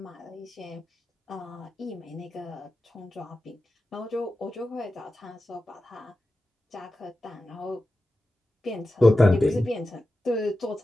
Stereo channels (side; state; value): both; normal; correlation 0.93